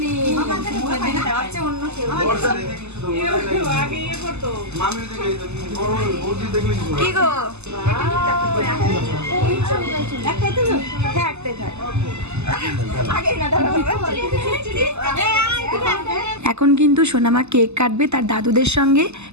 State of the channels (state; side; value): late; left; 0.81 ms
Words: কি গো এখন কিন্তু সোনামা কেক কাটবে তার দাদুদের সঙ্গে,